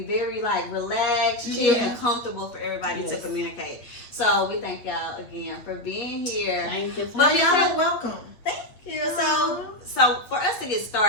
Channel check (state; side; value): late; right; 8.7 ms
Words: very like relaxed, chill, and comfortable for everybody to Yes. communicate. So we thank y'all again for being here. Thank you. But Y'all are welcome. Thank you. So for us to get